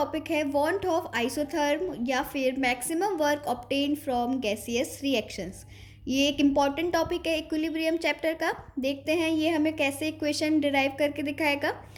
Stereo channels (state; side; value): identical; both; correlation 1.00